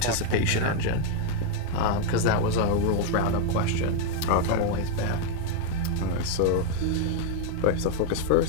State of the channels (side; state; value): both; different; correlation 0.00